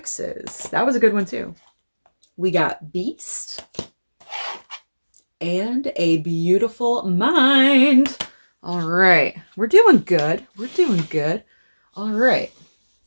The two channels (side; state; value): both; inverted; correlation -1.00